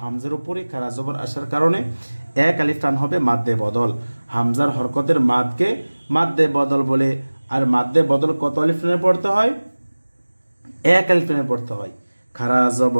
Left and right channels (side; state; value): both; inverted; correlation -1.00